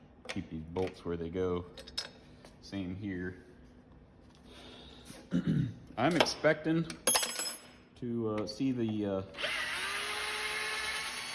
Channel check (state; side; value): identical; both; correlation 1.00